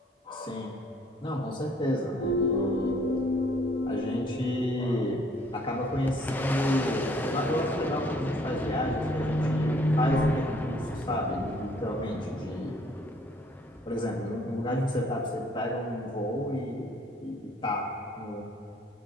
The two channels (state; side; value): normal; both; correlation 0.61